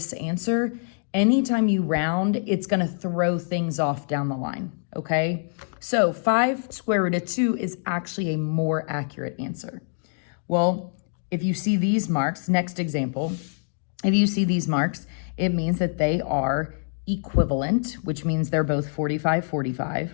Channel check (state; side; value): silent; right; digital silence